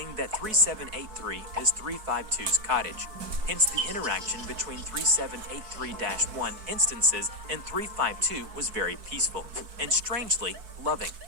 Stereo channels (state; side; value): late; left; 4.6 ms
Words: that 3783 is 352's cottage, hence the interaction between 3783-1 instances and 352 was very peaceful, and strangely loving.